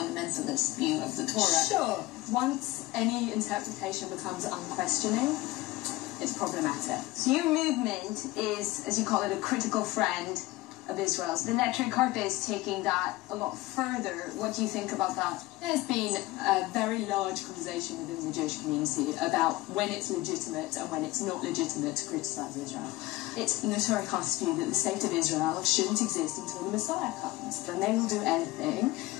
view of the Torah? Sure. Once any interpretation becomes unquestioning, it's problematic. So your movement is, as you call it, a critical friend of Israel's. The Neturei Karta is taking that a lot further. What do you think about that? There's been a very large conversation within the Jewish community about when it's legitimate and when it's not legitimate to criticise Israel. It's Neturei Karta's view that the state of Israel shouldn't exist until the Messiah comes. Then they will do anything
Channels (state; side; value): quieter; right; 19.1 dB